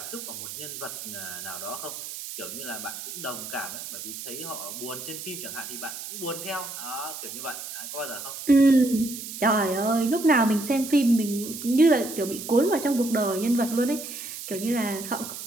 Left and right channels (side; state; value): right; noise; hiss, 9 dB below the sound